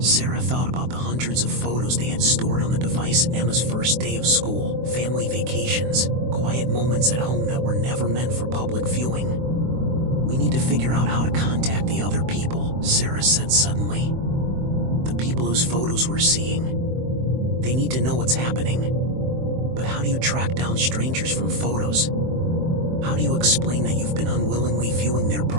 thought about the hundreds of photos they had stored on the device: Emma's first day of school, family vacations, quiet moments at home that were never meant for public viewing. "We need to figure out how to contact the other people," Sarah said suddenly. "The people whose photos we're seeing. They need to know what's happening. But how do you track down strangers from photos? How do you explain that you've been unwillingly viewing their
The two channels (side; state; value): left; late; 23 ms